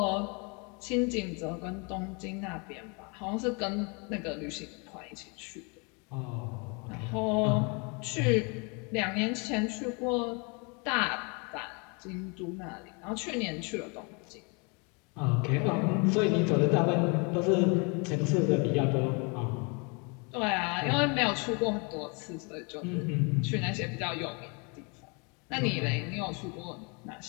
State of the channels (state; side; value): quieter; right; 32.6 dB